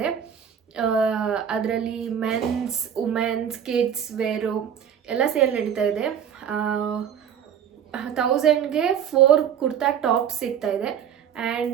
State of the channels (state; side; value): quieter; left; 8.6 dB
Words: ಅದರಲ್ಲಿ ಮೆನ್ಸ್, ವುಮೆನ್ಸ್, ಕಿಡ್ಸ್ ವೇರು ಎಲ್ಲ ಸೇಲ್ ನಡೀತಾ ಇದೆ. 1000ಗೆ 4 ಕುರ್ತಾ ಟಾಪ್ ಸಿಗ್ತಾ ಇದೆ.